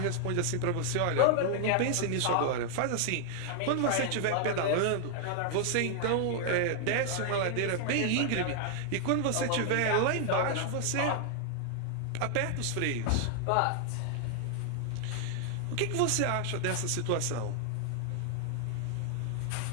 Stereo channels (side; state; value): both; different; correlation 0.00